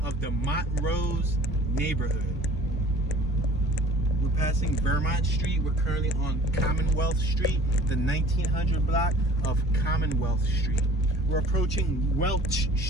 of the Montrose neighborhood. We're passing Vermont Street. We're currently on Commonwealth Street, the 1900 block of Commonwealth Street. We're approaching Welch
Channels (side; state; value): both; normal; correlation 0.48